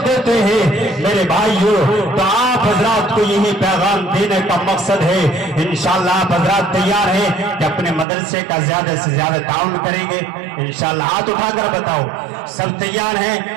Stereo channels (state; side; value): drops out; left; at 8.1 s